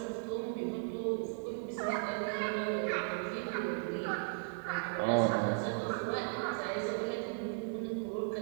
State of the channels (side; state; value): left; quieter; 33.5 dB